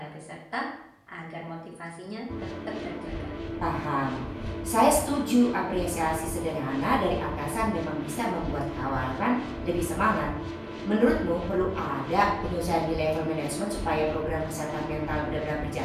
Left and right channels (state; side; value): identical; both; correlation 1.00